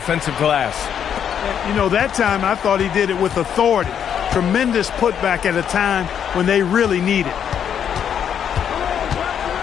glass. You know, that time I thought he did it with authority. Tremendous putback at a time when they really need it.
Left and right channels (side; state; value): right; quieter; 8.6 dB